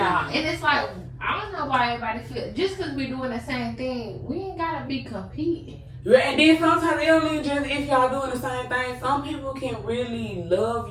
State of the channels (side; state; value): both; identical; correlation 1.00